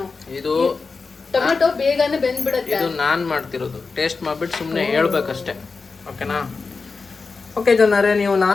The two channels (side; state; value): right; quieter; 4.4 dB